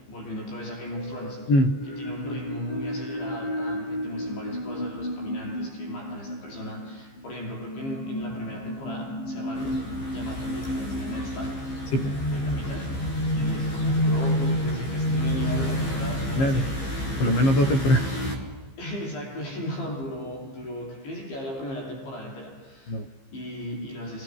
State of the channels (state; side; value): late; right; 15 ms